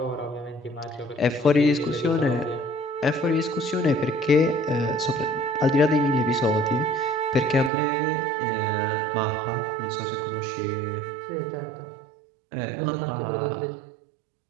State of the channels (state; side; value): drops out; left; at 7.7 s